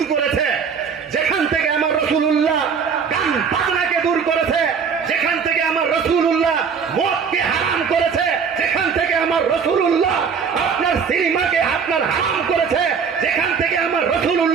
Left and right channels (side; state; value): left; quieter; 6.2 dB